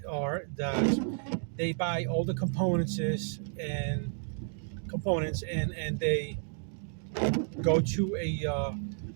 are that They buy all the and components, and they go to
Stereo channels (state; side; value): silent; left; 57 dB below the other